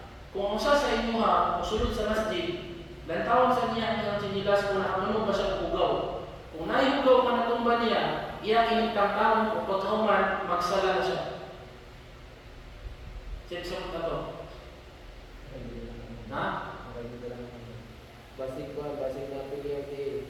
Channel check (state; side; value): identical; both; correlation 1.00